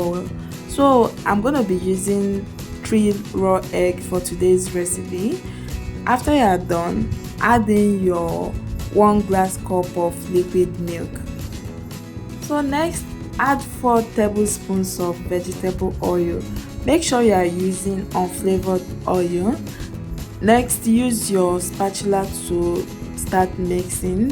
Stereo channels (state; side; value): identical; both; correlation 1.00